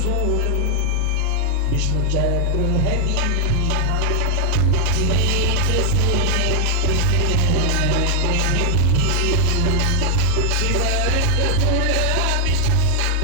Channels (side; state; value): both; different; correlation 0.00